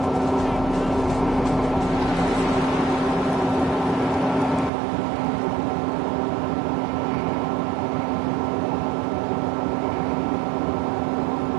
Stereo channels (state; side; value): drops out; left; at 4.7 s